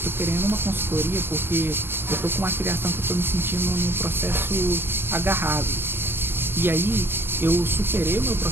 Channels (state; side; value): late; left; 0.11 ms